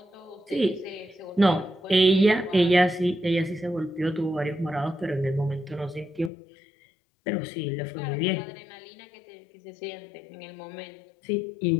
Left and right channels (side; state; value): right; drops out; at 6.3 s